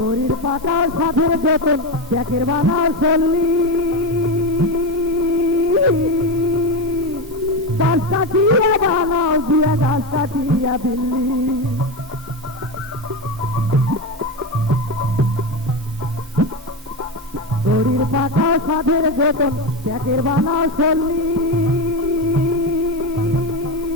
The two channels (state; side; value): normal; both; correlation 0.15